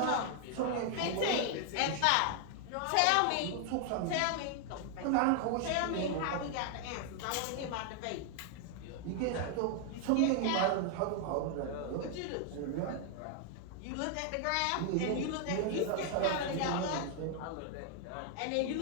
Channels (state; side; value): different; both; correlation 0.00